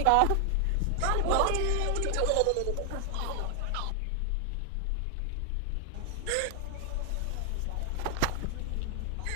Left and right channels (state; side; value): different; both; correlation 0.00